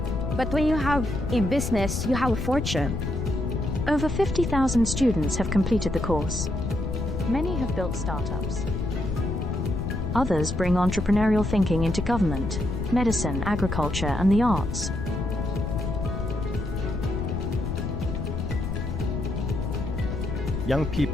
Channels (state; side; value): noise; left; rumble, 3 dB below the sound